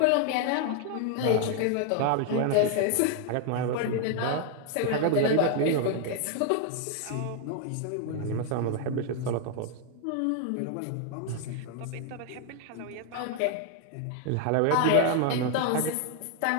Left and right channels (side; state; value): both; different; correlation 0.00